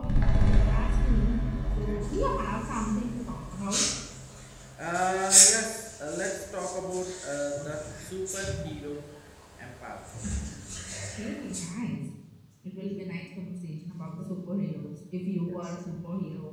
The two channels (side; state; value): both; identical; correlation 1.00